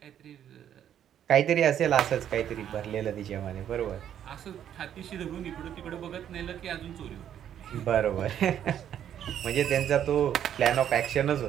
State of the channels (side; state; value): left; quieter; 10.0 dB